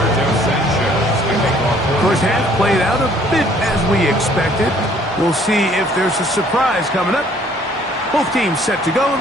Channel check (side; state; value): both; normal; correlation 0.59